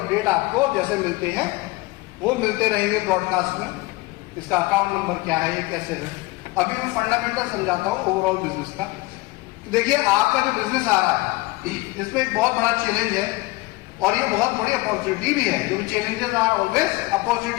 आपको जैसे मिलते हैं वो मिलते रहेंगे ब्रॉडकास्ट में। इसका अकाउंट नंबर क्या है, ये कैसे है, अभी मैं फंडामेंटल समझाता हूं ओवरऑल बिजनेस का। देखिए, आपका जो बिजनेस आ रहा है इसमें एक बहुत बड़ा चैलेंज है और ये बहुत बड़ी अपॉर्चुनिटी भी है, क्योंकि challenges are always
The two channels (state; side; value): quieter; right; 21.7 dB